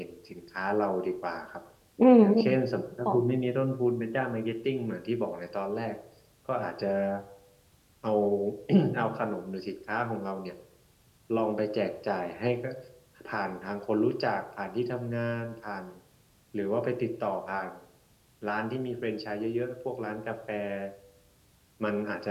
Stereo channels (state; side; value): identical; both; correlation 1.00